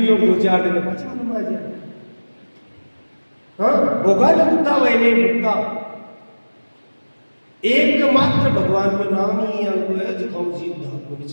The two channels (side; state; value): both; inverted; correlation -1.00